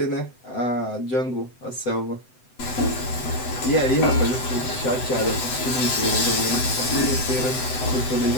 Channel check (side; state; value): right; late; 7.9 ms